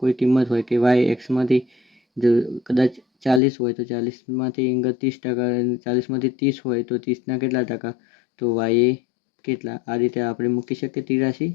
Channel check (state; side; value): drops out; right; at 3.4 s